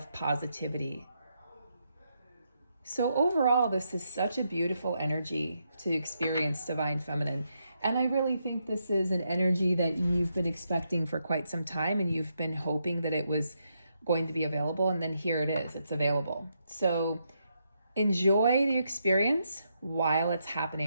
positivity. So overall, this is such a beautiful energy to experience Divine Feminine. And I really think this is an energy that you've been expecting for quite some time, and you've been hoping that it was going to be available, and then here it is, it's available. So enjoy the experience while it's happening.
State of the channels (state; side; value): inverted; both; correlation -0.81